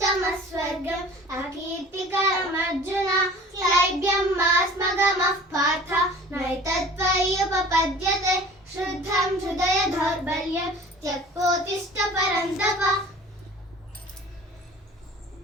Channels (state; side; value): normal; both; correlation 0.45